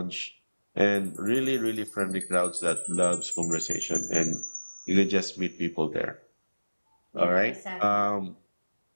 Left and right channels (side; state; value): both; inverted; correlation -1.00